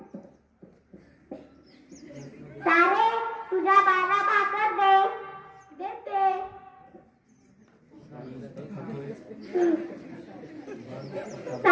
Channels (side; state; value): both; identical; correlation 1.00